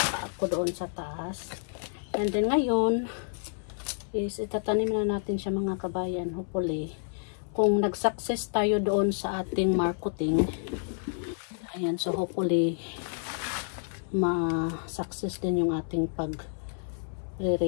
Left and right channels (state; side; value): silent; right; 58 dB below the other